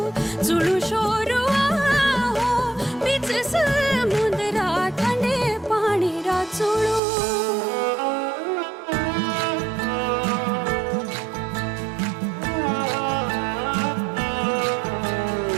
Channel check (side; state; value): left; drops out; at 7.0 s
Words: चुड़ू शोरू हो बीच समुद्रा ठंडे पानी रा चुड़ू